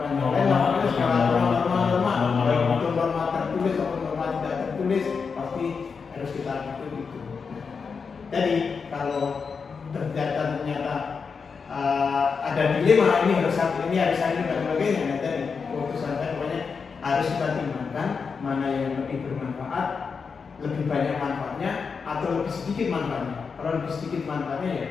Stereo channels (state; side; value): quieter; right; 5.5 dB